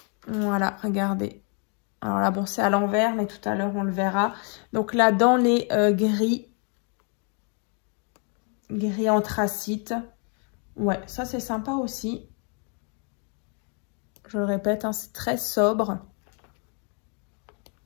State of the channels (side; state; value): right; quieter; 38.7 dB